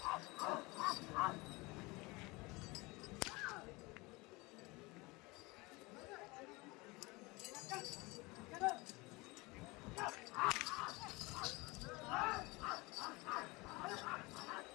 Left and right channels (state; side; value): quieter; right; 24.2 dB